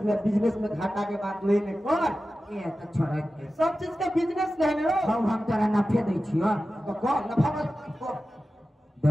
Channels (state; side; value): normal; both; correlation 0.94